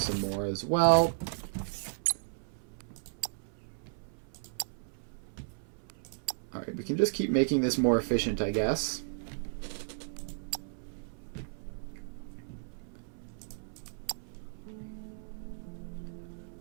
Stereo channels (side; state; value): left; silent; 55 dB below the other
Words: more as well. Alright, we can just keep making this more efficient, I guess.